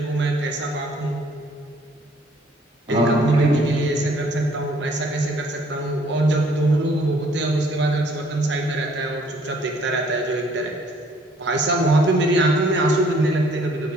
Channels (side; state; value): both; normal; correlation 0.61